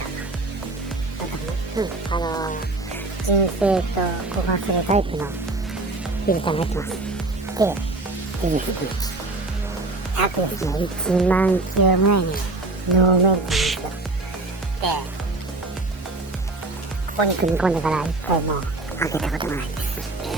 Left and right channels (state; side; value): quieter; left; 3.1 dB